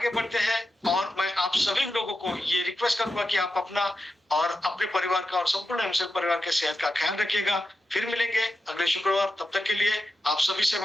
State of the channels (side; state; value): both; normal; correlation 0.90